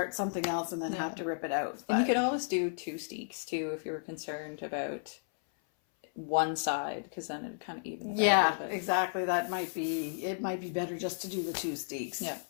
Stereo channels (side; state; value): right; silent; 56 dB below the other